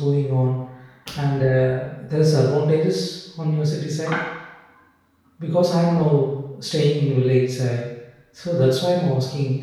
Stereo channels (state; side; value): identical; both; correlation 1.00